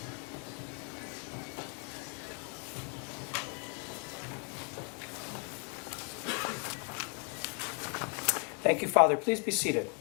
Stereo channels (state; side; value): quieter; right; 38.7 dB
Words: Thank you, Father. Please be seated.